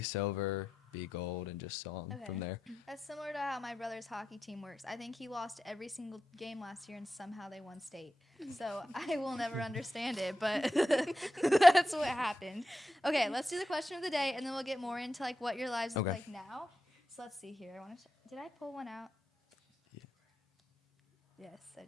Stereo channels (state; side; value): normal; both; correlation 0.89